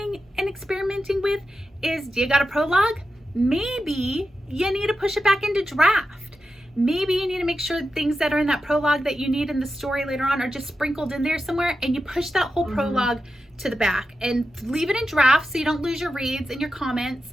and experimenting with is, do you got a prologue? Maybe you need to push it back into draft. Maybe you need to make sure things that are in that prologue that you need in the story later on are just sprinkled in there somewhere, and you push that whole prologue to the back and leave it in draft so you don't lose your reads and your comments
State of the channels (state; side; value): normal; both; correlation 0.90